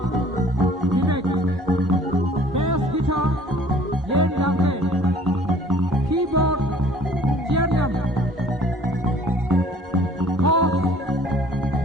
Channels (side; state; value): both; normal; correlation 0.52